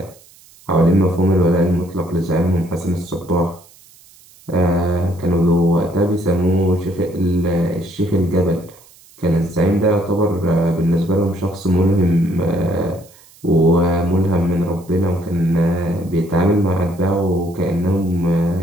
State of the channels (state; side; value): noise; right; hiss, 26 dB below the sound